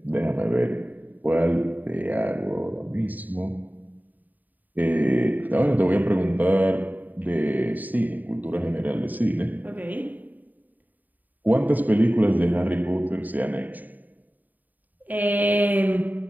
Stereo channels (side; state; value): left; late; 0.084 ms